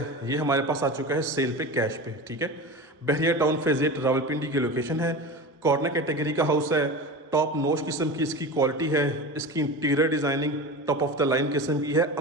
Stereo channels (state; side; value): normal; both; correlation 0.29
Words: ये हमारे पास आ चुका है सेल पे, कैश पे। ठीक है, बहरिया टाउन फेज़ 8 रावलपिंडी की लोकेशन है। कॉर्नर कैटेगरी का हाउस है। टॉप नॉच किस्म की इसकी क्वालिटी है। इसकी interior designing top of the line किस्म की है,